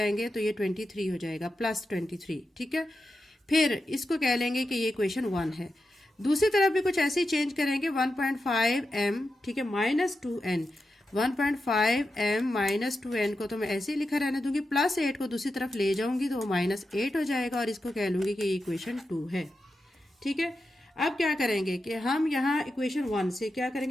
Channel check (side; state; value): both; normal; correlation 0.89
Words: तो ये 23 हो जाएगा, प्लस 23। ठीक है, फिर इसको कह लेंगे कि ये इक्वेशन 1 है। दूसरी तरफ भी कुछ ऐसे ही चेंज करेंगे, 1.5m, ठीक है, minus 2n, 1.5m minus 2n को तो मैं ऐसे ही लिखा रहने दूंगी, प्लस 8 को दूसरी तरफ ले जाऊंगी तो माइनस 8 हो जाएगा और इसको कह लूंगी कि ये इक्वेशन 2 है। ठीक है, अब क्या करेंगे कि हम यहाँ इक्वेशन 1 से क्या